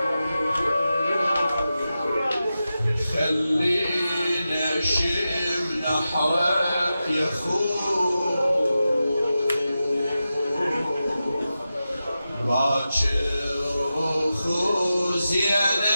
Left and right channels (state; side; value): inverted; both; correlation -0.92